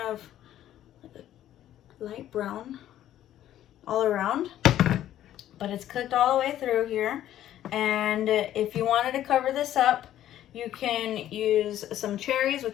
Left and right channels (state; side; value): quieter; right; 12.2 dB